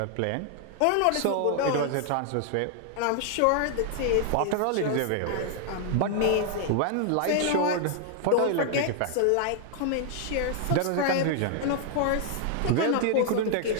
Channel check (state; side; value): different; both; correlation 0.00